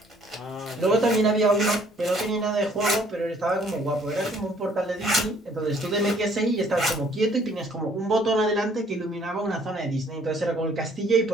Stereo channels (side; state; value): both; normal; correlation 0.61